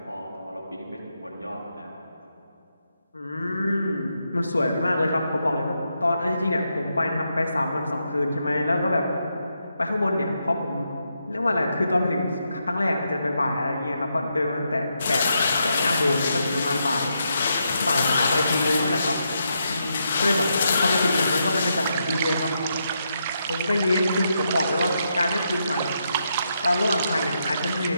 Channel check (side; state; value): both; inverted; correlation -0.81